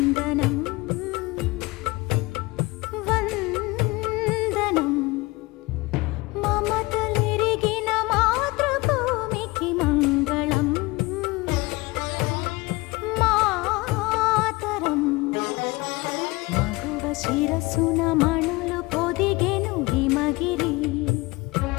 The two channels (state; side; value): quieter; right; 22.8 dB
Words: vandanam. Mamatalirigina matruభూమికి మంగళం, మాతరం. మగువ శిరసున మణులు పొదిగెను హిమగిరి,